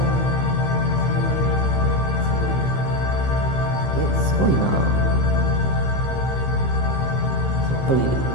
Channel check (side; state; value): right; late; 15 ms